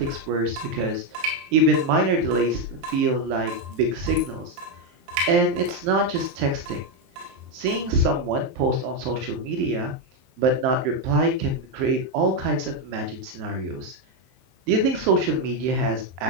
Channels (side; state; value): left; late; 23 ms